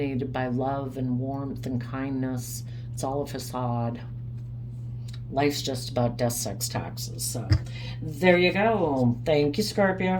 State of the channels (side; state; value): both; identical; correlation 1.00